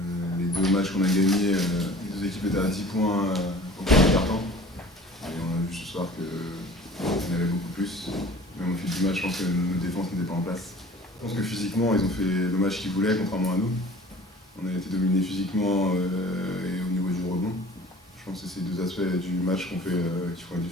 Les deux matchs qu'on a gagnés, les deux équipes étaient à 10 points au premier quart-temps. Et on a vu ce soir qu'il y en avait beaucoup plus. Même au fil du match, je pense que notre défense n'était pas en place. Je pense que physiquement, ils ont fait le match qu'ils voulaient, contrairement à nous. On a été dominés physiquement et au niveau du rebond. Je pense que c'est ces deux aspects du match qui font la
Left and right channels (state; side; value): normal; both; correlation 0.45